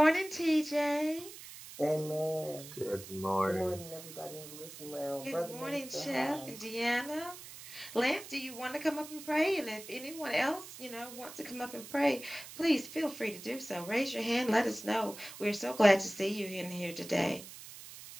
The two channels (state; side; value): noise; right; hiss, 14 dB below the sound